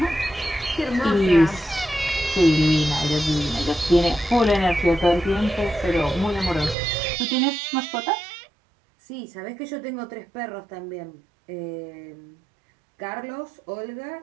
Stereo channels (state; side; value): drops out; left; at 6.8 s